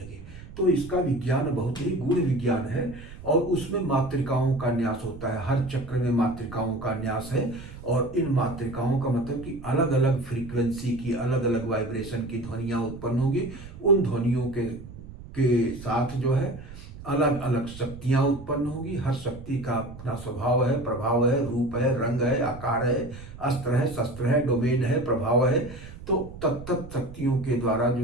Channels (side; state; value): right; noise; rumble, 15 dB below the sound